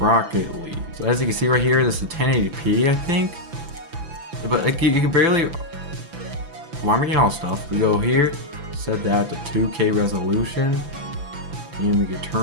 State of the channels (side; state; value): left; late; 5.9 ms